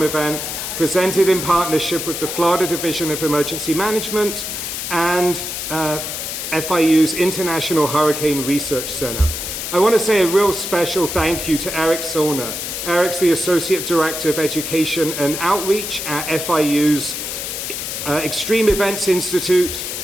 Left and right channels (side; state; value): left; noise; hiss, 5 dB below the sound